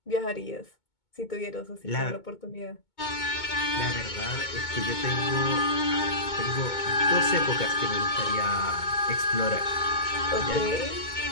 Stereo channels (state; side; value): late; right; 2.2 ms